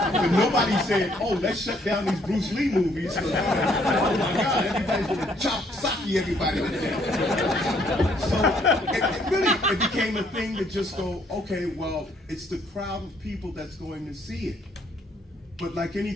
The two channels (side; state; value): both; normal; correlation 0.66